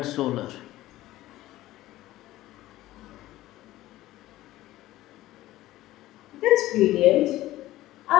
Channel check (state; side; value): quieter; right; 15.9 dB